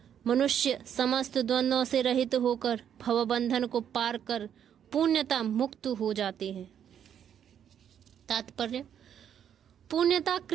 मनुष्य समस्त द्वंद्वों से रहित होकर भवबंधन को पार कर पुण्यता मुक्त हो जाते हैं। तात्पर्य: पुण्यता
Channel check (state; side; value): quieter; left; 9.1 dB